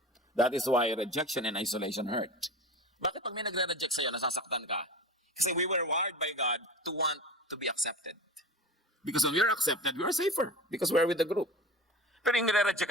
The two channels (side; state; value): both; normal; correlation 0.33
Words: That is why rejection and isolation hurt. Bakit pag may nagre-reject sa'yo, nasasaktan ka? Kasi we were wired by God to want to be accepted. Because when we are accepted, we are safer. Because we are with the group. Pero yung nire-reject